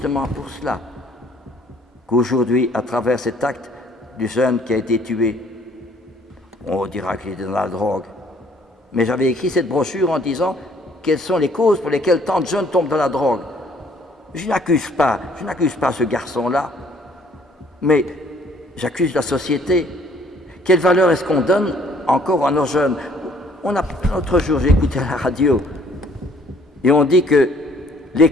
pour cela qu'aujourd'hui, à travers cet acte du jeune qui a été tué, on dira qu'il était dans la drogue. Mais j'avais écrit cette brochure en disant quelles sont les causes pour lesquelles tant de jeunes tombent dans la drogue. Je n'accuse pas ce garçon-là, mais j'accuse la société. Quelle valeur est-ce qu'on donne encore à nos jeunes? L'autre jour, j'ai écouté à la radio, et on dit que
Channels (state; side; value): normal; both; correlation 0.60